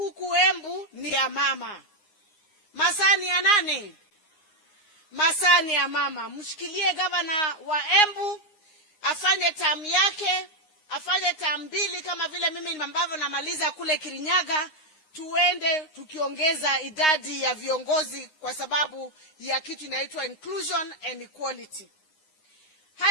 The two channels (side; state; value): right; late; 9.6 ms